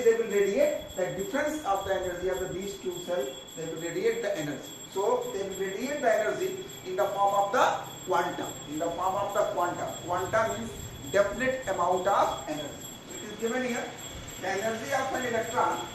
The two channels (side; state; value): both; identical; correlation 1.00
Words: will radiate? The difference of the energy of these two cells, they will radiate the energy. So they will radiate the energy in the form of the quantum. In the form of the quantum. Quantum means definite amount of energy. It is given here. The energy of an electron